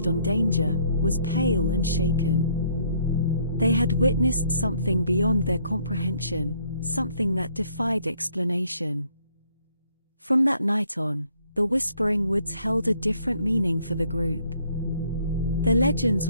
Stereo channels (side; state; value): both; inverted; correlation -0.65